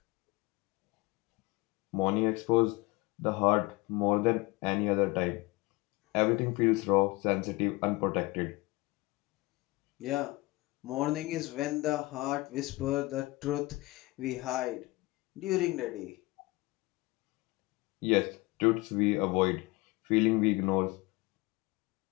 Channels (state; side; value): quieter; right; 22.1 dB